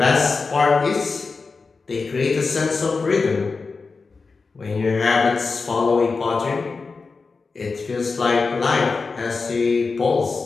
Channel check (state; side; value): quieter; right; 4.4 dB